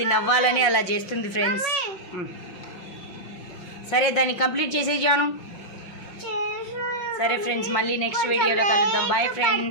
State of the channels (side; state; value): right; late; 5.7 ms